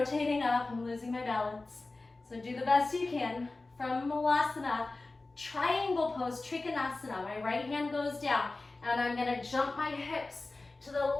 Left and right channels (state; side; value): quieter; right; 3.3 dB